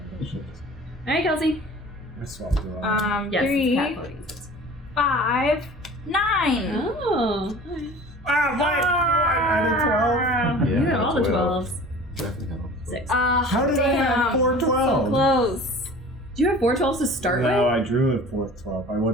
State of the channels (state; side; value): normal; both; correlation 0.42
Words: That shit is- All right, Kelsey. I swapped it all. Yes. 3, cat voting. 5, 9. Oh. I added 12. You got all the 12s. Definitely have them. 6. How did I have 4 So 12? close. Do you have 4 12s to start No, with? I drew a 4th 12. I